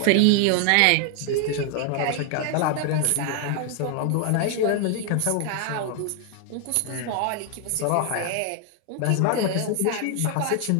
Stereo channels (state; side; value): different; both; correlation 0.00